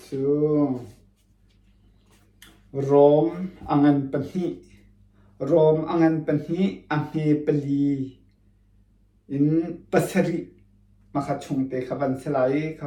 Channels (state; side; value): identical; both; correlation 1.00